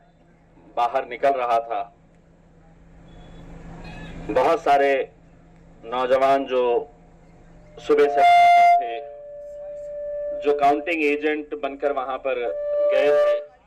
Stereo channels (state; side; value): identical; both; correlation 1.00